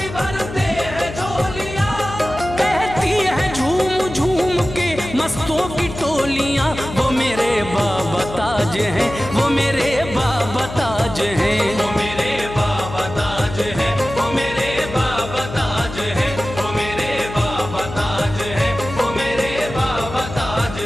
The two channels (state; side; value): noise; left; hum, 10 dB below the sound